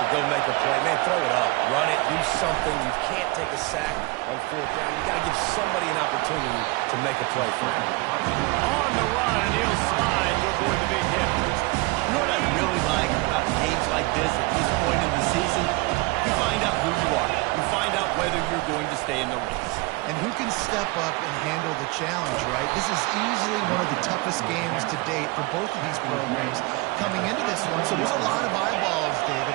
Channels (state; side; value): quieter; left; 24.3 dB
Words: go make a play. Man, throw it up, run it, do something. You can't take a sack on 4th down. You got to give somebody an opportunity to make a play for him. On the run, and he'll slide to avoid the big hit. You know what I really like about games like this at this point in the season? You find out who you are. You find out whether you're going to stay in the race. And who can step up and handle the challenge, right? This is easily one of the toughest games to date for both of these programs coming into this one. So there's a lot of eyeballs, David,